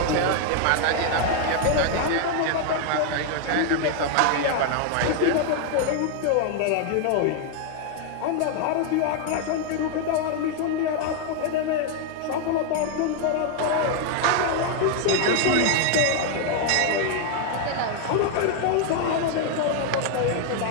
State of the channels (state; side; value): different; both; correlation 0.00